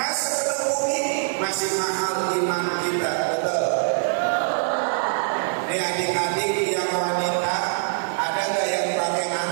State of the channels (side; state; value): left; silent; 56 dB below the other